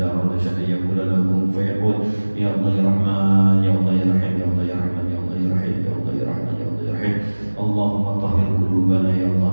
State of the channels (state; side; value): inverted; both; correlation -1.00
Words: arada syai'an yaqulu lahu kun fayakun. Ya Allah ya Rahman, ya Allah ya Rahim, ya Allah ya Rahman, ya Allah ya Rahim, ya Allah ya Rahman, ya Allah ya Rahim. Allahumma tahhir qulubana ya Allah